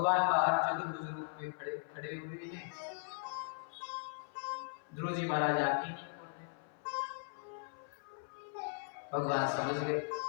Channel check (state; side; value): silent; right; 52 dB below the other